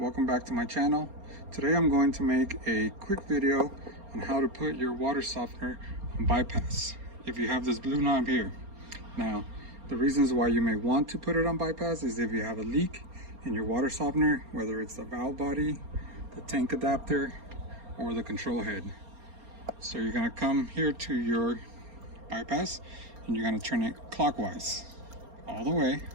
back to my channel. Today I'm going to make a quick video on how to put your water softener on bypass if you have this blue knob here. Now the reasons why you may want to put it on bypass is if you have a leak in your water softener, whether it's the valve body, the tank adapter, or the control head. So you're going to come here to your bypass and you're going to turn it clockwise all the way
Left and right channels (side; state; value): left; late; 4.3 ms